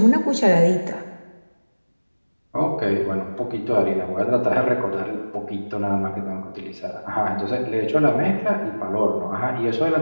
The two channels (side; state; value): both; inverted; correlation -1.00